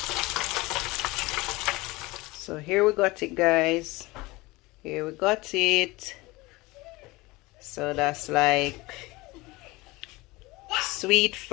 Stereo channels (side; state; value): right; quieter; 21.9 dB